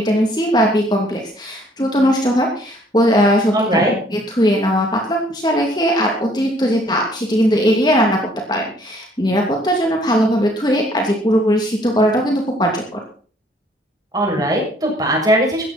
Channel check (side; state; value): both; normal; correlation 0.61